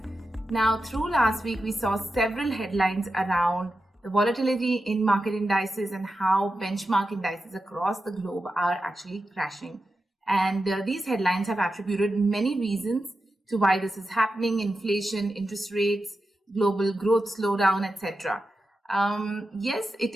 Now, through last week, we saw several headlines around the volatility in market indices and how benchmark indices across the globe are actually crashing. And these headlines have attributed many reasons to why this is happening: inflation, interest rates, global growth slowdown, etc. Yes, it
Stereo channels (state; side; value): normal; both; correlation 0.90